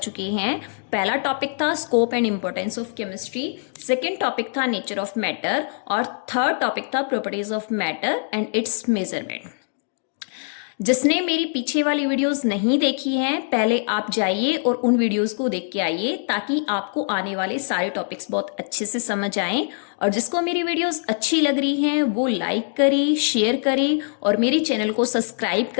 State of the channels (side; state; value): right; silent; digital silence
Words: हैं। पहला टॉपिक था scope and importance of chemistry, second topic था नेचर ऑफ मैटर और थर्ड टॉपिक था properties of matter and it's measurement. जिसने मेरी पीछे वाली वीडियोस नहीं देखी हैं, पहले आप जाइए और उन वीडियोस को देख के आइए, ताकि आपको आने वाले सारे टॉपिक्स बहुत अच्छे से समझ आएं। और जिसको मेरी वीडियोस अच्छी लग रही हैं वो लाइक करे, शेयर करे और मेरे चैनल को सब्सक्राइब